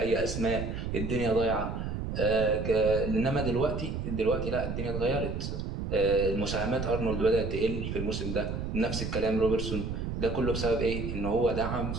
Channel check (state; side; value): noise; right; rumble, 4 dB below the sound